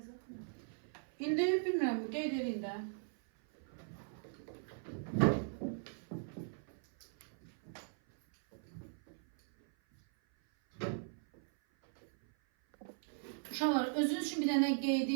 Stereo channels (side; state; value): left; silent; 52 dB below the other